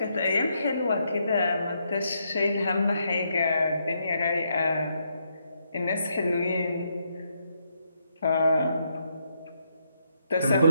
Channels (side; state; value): both; inverted; correlation -0.77